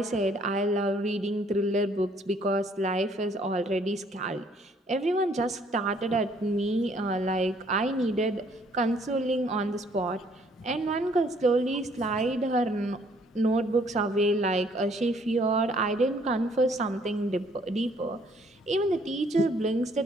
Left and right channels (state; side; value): normal; both; correlation 0.63